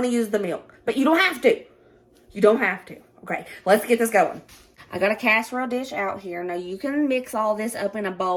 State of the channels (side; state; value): both; identical; correlation 1.00